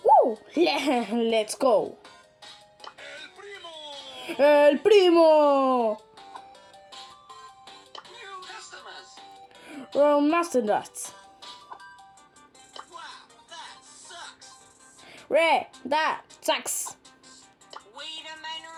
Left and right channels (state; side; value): identical; both; correlation 1.00